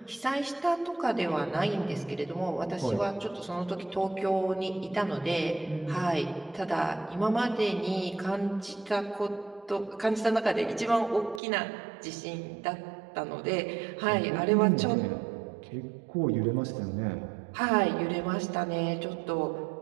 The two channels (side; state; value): left; drops out; at 11.4 s